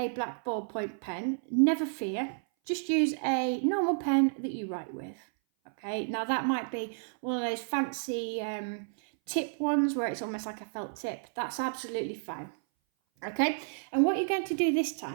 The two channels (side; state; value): left; silent; 57 dB below the other